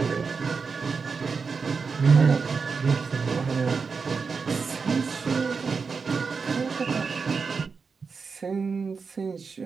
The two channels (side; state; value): left; quieter; 5.1 dB